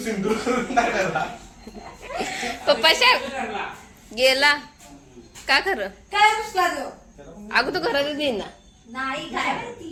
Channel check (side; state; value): both; identical; correlation 1.00